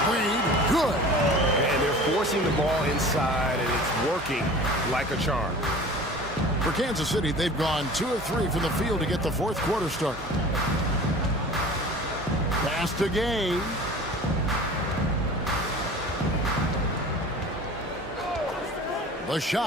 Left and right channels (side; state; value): both; normal; correlation 0.41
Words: Wade, good. And they're forcing the ball inside, and it's working like a charm. For Kansas City, they've gone 2 of 3 from the field to get the 4th quarter started. Pass to Gay. The